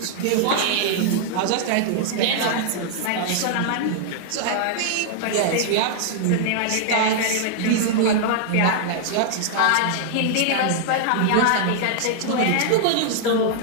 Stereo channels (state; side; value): different; both; correlation 0.00